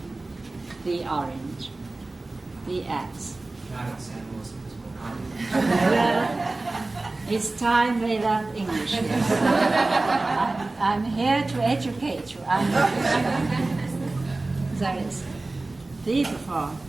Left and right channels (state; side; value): quieter; left; 3.1 dB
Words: the orange, the axe. Not in San Luis Obispo. Well, it's time they learn English. I'm here to educate you. There is the before.